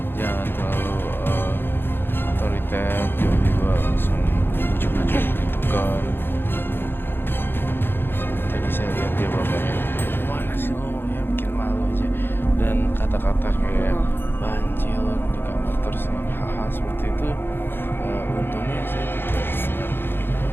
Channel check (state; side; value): late; right; 0.10 ms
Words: Jangan terlalu otoriter, tiba-tiba langsung ujuk-ujuk tekan. Tadi saya lihat dia bapaknya, mana sih lo ya bikin malu aja. Dan kata-kata kayak banci lo di kamar terus hal-hal seperti itu. Untungnya saya tidak pernah